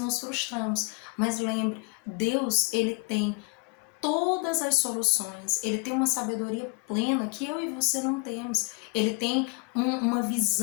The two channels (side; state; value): right; quieter; 30.5 dB